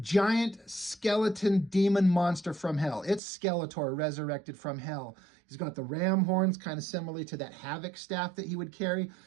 skeleton demon monster from hell. It's Skeletor resurrected from hell. He's got the ram horns, kind of similarly to that Havoc staff that he would carry.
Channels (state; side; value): drops out; left; at 3.2 s